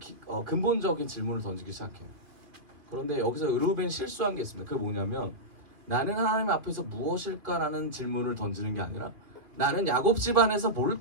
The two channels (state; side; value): late; left; 2.2 ms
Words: 근본적인 질문을 던지기 시작해요. 그런데 여기서 르우벤이 실수한 게 있습니다. 그게 뭐냐면, 나는 하나님 앞에서 무엇일까라는 질문을 던지는 게 아니라 나는 야곱 집안에서